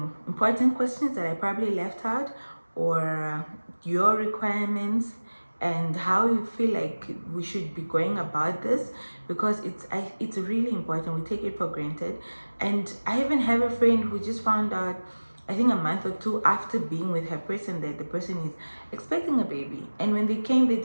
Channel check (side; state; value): both; inverted; correlation -1.00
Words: important questions that I probably left out, or your requirements, and how you feel like we should be going about this, because it's really important. We take it for granted. And I even have a friend who just found out, I think a month or two after being with her person, that the person is expecting a baby. And when they came, they